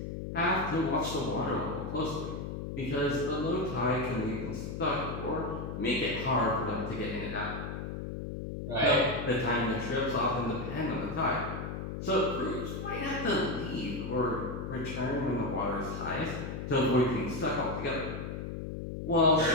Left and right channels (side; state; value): left; noise; hum, 6 dB below the sound